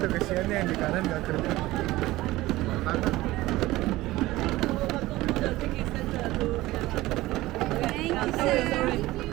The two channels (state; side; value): quieter; left; 17.9 dB